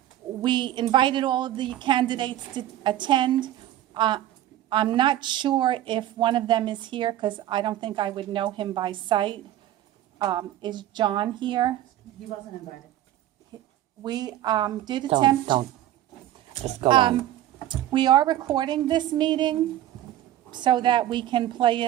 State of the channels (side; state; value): left; quieter; 13.1 dB